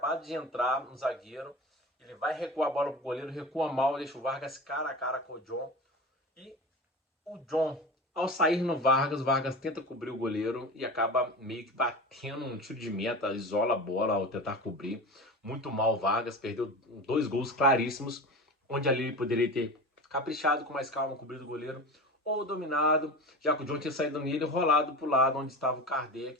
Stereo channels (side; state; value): both; normal; correlation 0.30